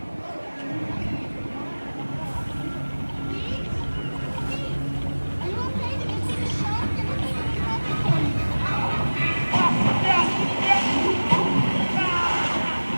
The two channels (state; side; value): inverted; both; correlation -1.00